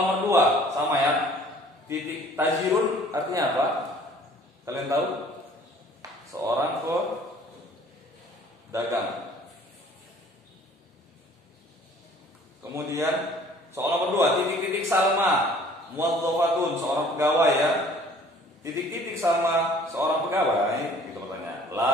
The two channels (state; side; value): normal; both; correlation 0.53